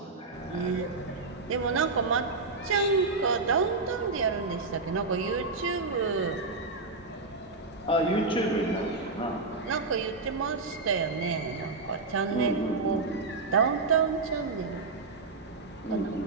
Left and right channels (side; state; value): left; quieter; 3.8 dB